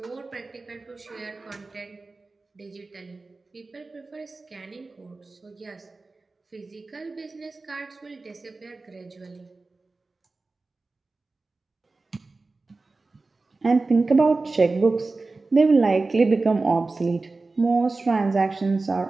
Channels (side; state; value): left; quieter; 3.6 dB